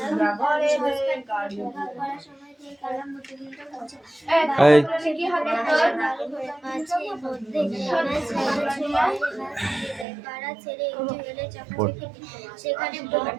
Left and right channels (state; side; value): drops out; left; at 10.1 s